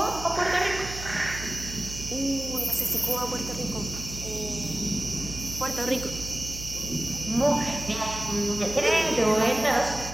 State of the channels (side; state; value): right; noise; hum, 10 dB below the sound